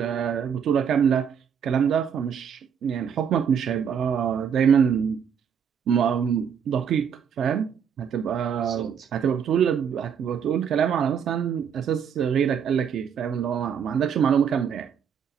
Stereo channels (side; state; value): left; quieter; 7.6 dB